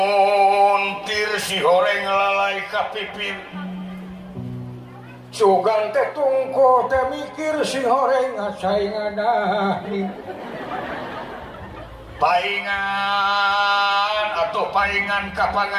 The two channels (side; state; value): both; identical; correlation 1.00